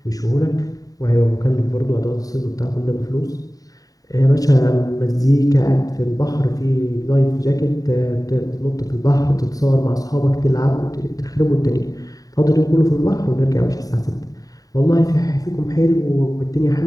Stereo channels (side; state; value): right; late; 0.18 ms